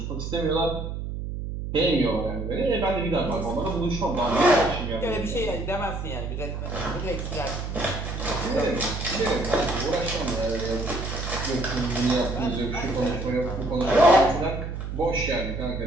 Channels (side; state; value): right; noise; hum, 5 dB below the sound